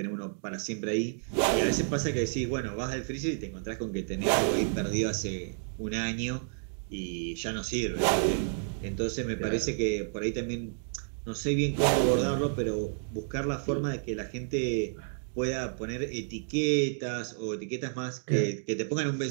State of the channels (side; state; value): left; silent; digital silence